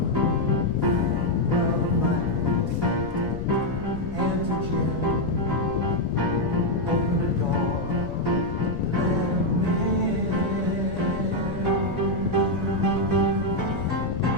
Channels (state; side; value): noise; left; rumble, 10 dB below the sound